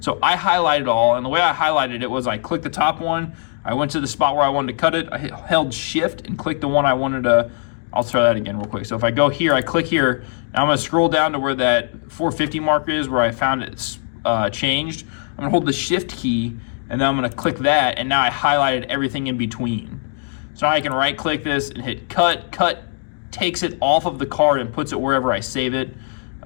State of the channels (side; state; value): right; silent; digital silence